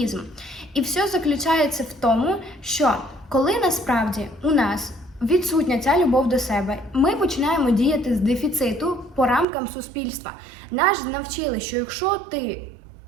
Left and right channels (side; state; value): left; drops out; at 9.5 s